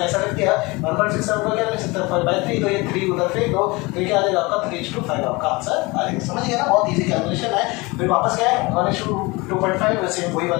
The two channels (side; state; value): right; quieter; 24.5 dB